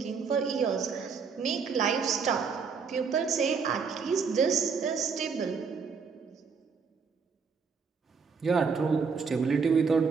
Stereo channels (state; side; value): quieter; left; 5.5 dB